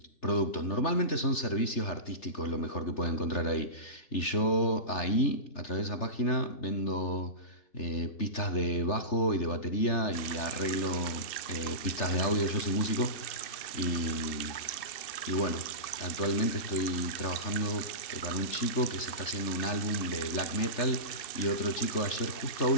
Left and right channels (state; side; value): late; right; 3.4 ms